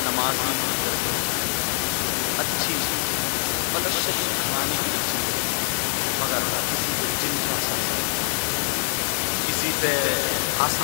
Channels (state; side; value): silent; right; 61 dB below the other